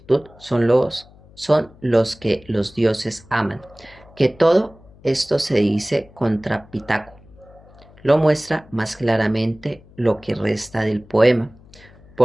son los que los dioses aman, que todo esto se dice contra Pitaco. Lo muestra más claramente lo que resta del poema,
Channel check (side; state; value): left; noise; hum, 25 dB below the sound